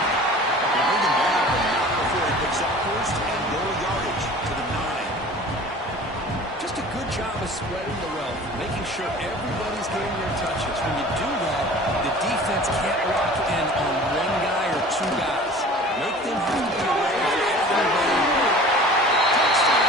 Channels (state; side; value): normal; both; correlation 0.43